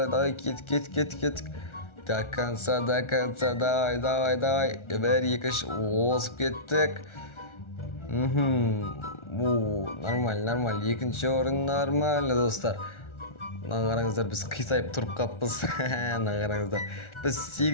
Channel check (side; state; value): right; late; 1.4 ms